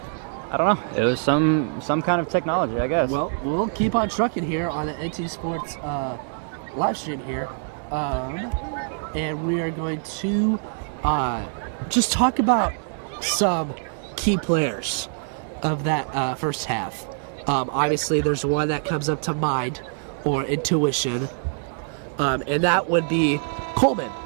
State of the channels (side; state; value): left; silent; 59 dB below the other